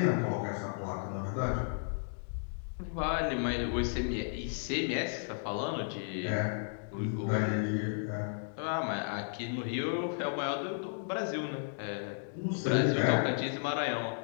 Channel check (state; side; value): silent; right; digital silence